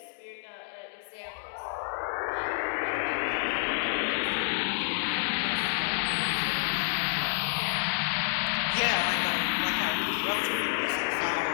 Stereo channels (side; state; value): right; silent; digital silence